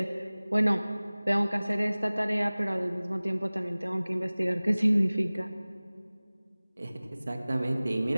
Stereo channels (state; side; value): inverted; both; correlation -0.99